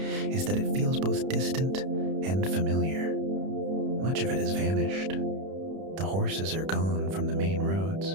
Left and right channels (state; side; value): late; left; 31 ms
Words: is that it feels both distant and familiar. Much of it has vanished. The horses are gone from the main roads.